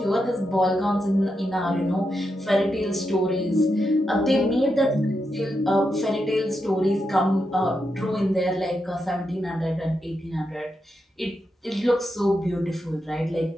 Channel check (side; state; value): both; normal; correlation 0.85